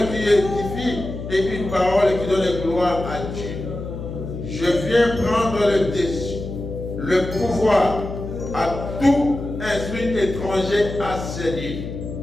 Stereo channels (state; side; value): noise; left; hum, 8 dB below the sound